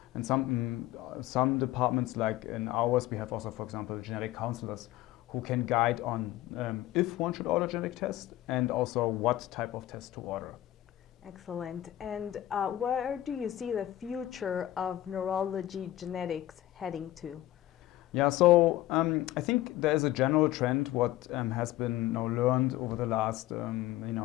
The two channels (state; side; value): quieter; right; 14.8 dB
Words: And some departments, like in ours, we have also, for example, genetic counselors who can guide on if one should order a genetic test and also what type of test to order. Excellent. And where do you see the future of neurology genetics heading to? Yeah, so I think there is a general trend what has been now learned over the last